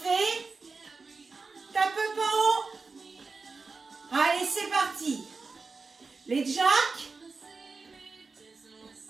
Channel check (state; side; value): quieter; left; 4.3 dB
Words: Tape pas haut. Allez, c'est parti. Les jacks.